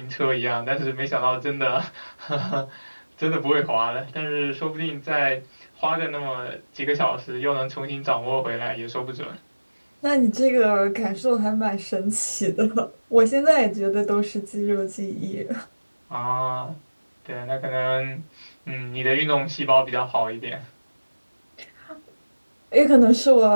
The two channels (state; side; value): inverted; both; correlation -1.00